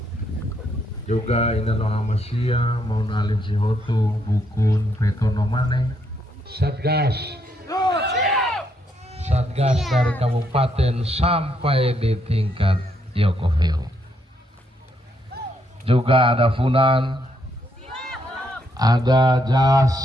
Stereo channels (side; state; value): both; normal; correlation 0.75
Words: Juga Inano Amasia, Maun Alim Sihotu, Bukun, Petono Mane, Satgas dari kabupaten sampai di tingkat YOKOVU. Juga ada Funan, ada JAS,